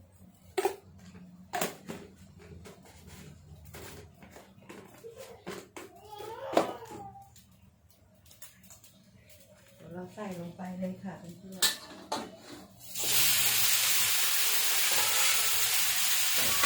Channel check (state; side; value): identical; both; correlation 1.00